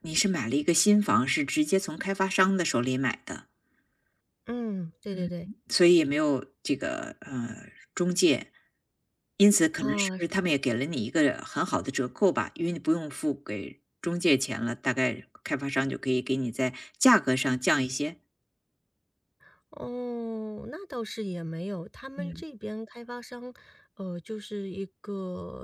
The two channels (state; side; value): identical; both; correlation 1.00